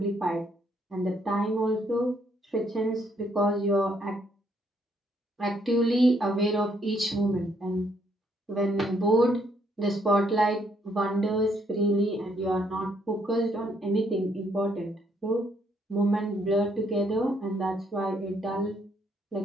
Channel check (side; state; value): both; normal; correlation 0.70